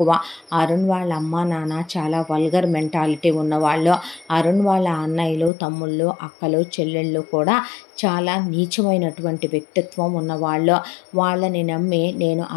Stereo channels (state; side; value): drops out; right; at 5.5 s